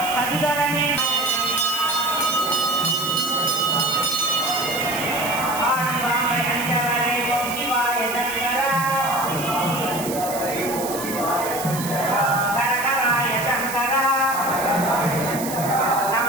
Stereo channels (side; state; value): right; noise; hiss, 8 dB below the sound